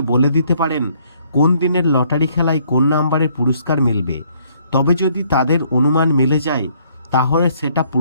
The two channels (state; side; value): inverted; both; correlation -0.65